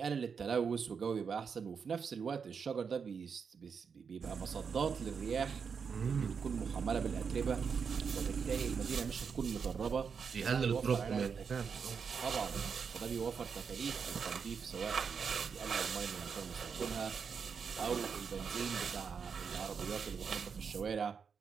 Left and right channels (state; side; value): quieter; left; 6.2 dB